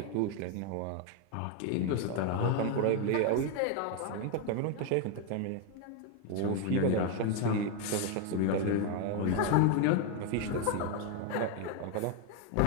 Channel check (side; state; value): both; different; correlation 0.01